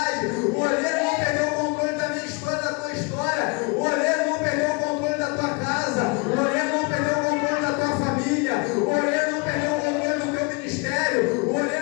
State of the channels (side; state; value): right; quieter; 30.9 dB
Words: O oleiro não perdeu o controle da minha história, da tua história. O oleiro não perdeu o controle da tua casa. O oleiro não perdeu o controle da tua família. O oleiro não perdeu o controle do teu ministério. O